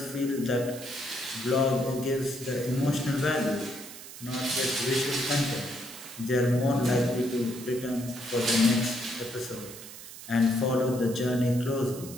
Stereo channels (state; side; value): noise; right; hiss, 14 dB below the sound